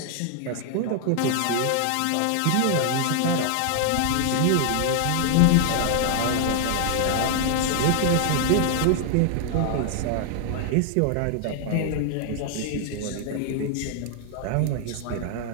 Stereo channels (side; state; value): both; different; correlation 0.00